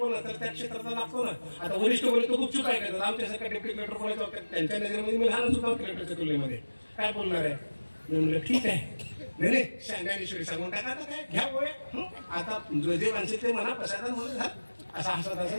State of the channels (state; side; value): inverted; both; correlation -1.00